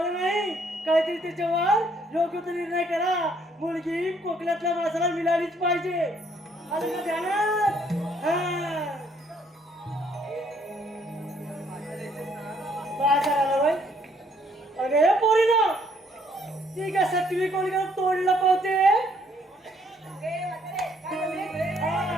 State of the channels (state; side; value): normal; both; correlation 0.66